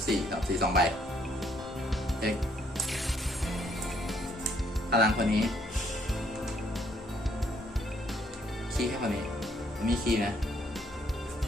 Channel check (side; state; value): both; normal; correlation 0.68